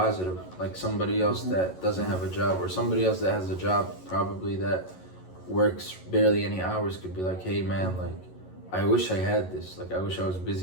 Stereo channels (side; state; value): right; late; 11 ms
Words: like somebody else that doesn't have a job, or somebody else that has a job probably that works barely any hours could be like, hey man, like I wish I had this. Like I wish I was